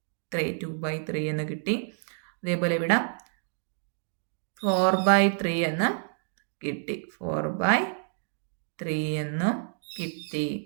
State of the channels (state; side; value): silent; left; digital silence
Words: 2/3 എന്ന് കിട്ടി. അതേപോലെ ഇവിടെ 4/3 എന്ന് കിട്ടി 4/3 എന്നും കിട്ടി.